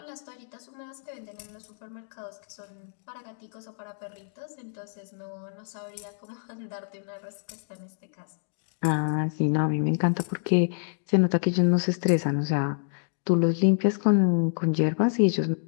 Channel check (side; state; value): right; silent; digital silence